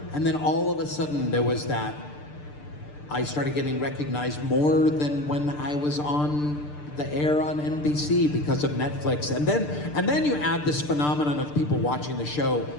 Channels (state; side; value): late; right; 6.7 ms